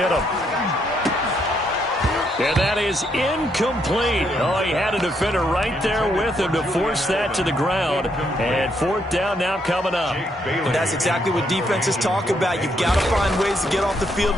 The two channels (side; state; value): both; normal; correlation 0.75